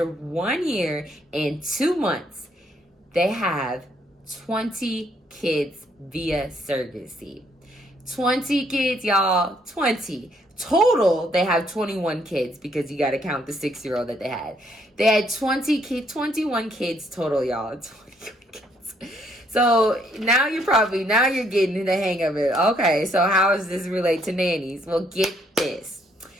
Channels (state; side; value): normal; both; correlation 0.70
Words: 1 year and 2 months, they have 20 kids via surrogacy. 20 kids, y'all. 20. Total, they have 21 kids because you got to count the 6-year-old that they had. They had 21 kids total, y'all. 21 kids. So now you're getting the hang of it. Okay, so how does this relate to nannies? Well, get this.